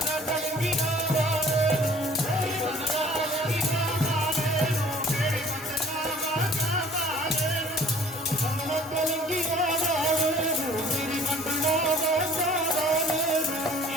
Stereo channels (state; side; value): normal; both; correlation 0.52